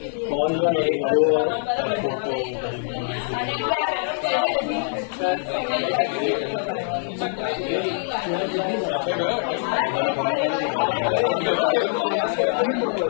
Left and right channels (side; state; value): right; silent; digital silence